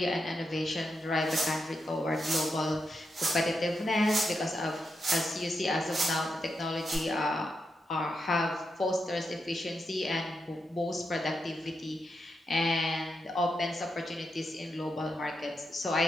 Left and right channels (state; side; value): normal; both; correlation 0.85